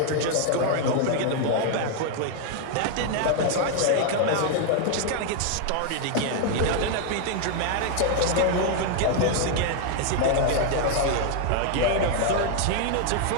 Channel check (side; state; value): both; different; correlation 0.00